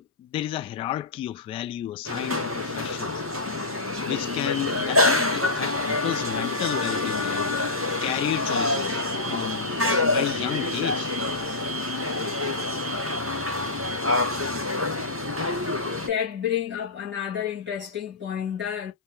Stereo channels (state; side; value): quieter; right; 3.3 dB